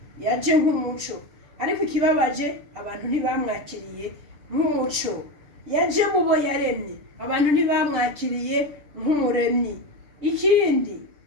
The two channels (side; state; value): left; late; 6.8 ms